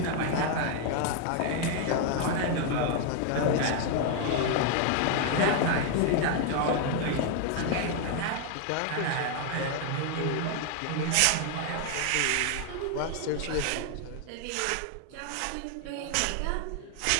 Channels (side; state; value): both; different; correlation 0.00